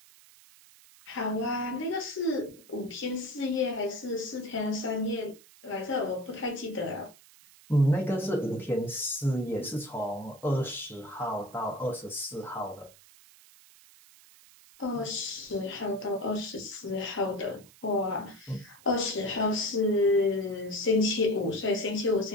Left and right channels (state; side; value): noise; right; hiss, 24 dB below the sound